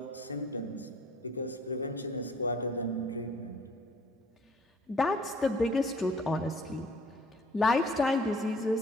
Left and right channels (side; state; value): both; normal; correlation 0.55